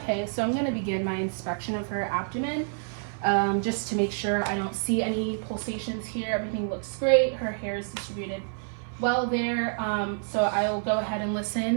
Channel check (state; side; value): silent; left; 57 dB below the other